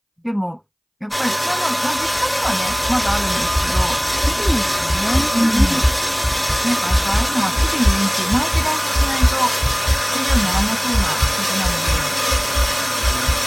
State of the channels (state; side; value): identical; both; correlation 1.00